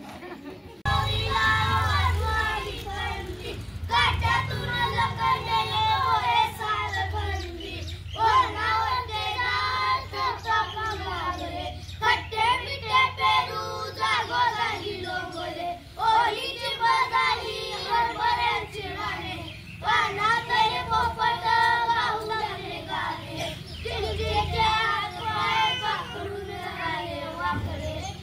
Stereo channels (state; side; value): identical; both; correlation 1.00